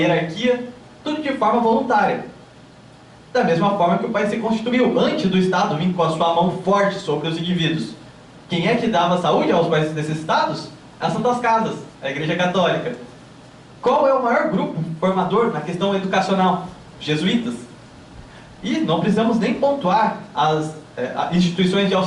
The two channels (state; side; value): identical; both; correlation 1.00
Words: tudo de forma voluntária. Da mesma forma que o país se constituiu antes do Estado vir com a sua mão forte sobre os indivíduos. Quem é que dava saúde aos mais necessitados? As Santas Casas, a Igreja Católica. Qual é o maior grupo formador na questão educacional? Jesuítas. E não precisamos nem pontuar as instituições de